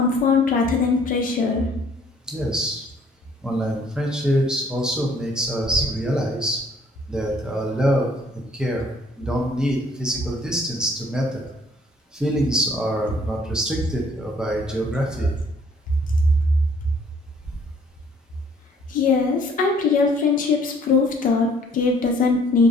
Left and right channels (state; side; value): normal; both; correlation 0.60